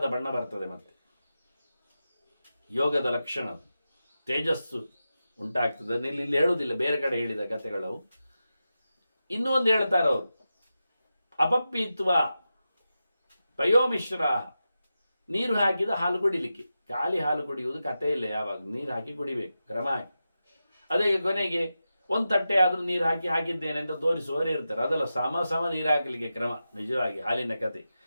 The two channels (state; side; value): inverted; both; correlation -0.91